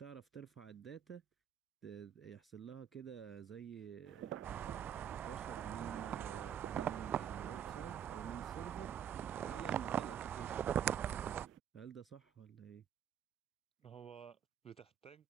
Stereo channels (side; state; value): left; quieter; 9.2 dB